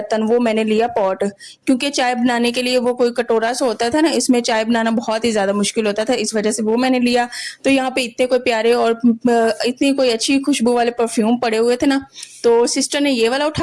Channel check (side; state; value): both; identical; correlation 1.00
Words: वो मैंने लिया पॉट। क्योंकि चाय बनाने के लिए वो कोई कटोरा सा होता था ना, इसमें चाय बनाना बहुत ही ज़्यादा मुश्किल होता था, इस वजह से वो मैंने लिया। तो यहाँ पे इतने कोई प्यारे और इतनी कोई अच्छी खुशबू वाले परफ्यूम पड़े हुए थे ना, तो सिस्टर ने ये वाला